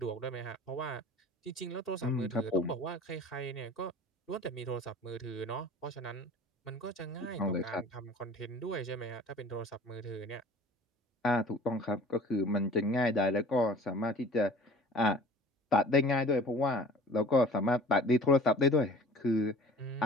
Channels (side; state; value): both; normal; correlation 0.45